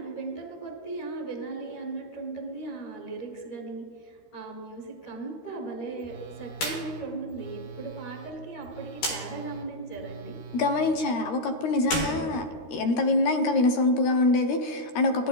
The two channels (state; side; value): late; right; 13 ms